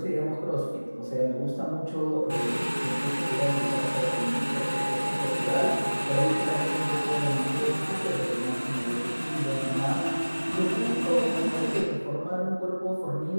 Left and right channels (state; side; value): inverted; both; correlation -1.00